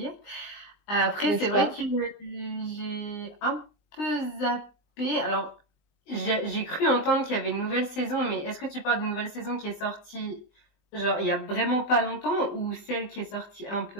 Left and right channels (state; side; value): late; right; 20 ms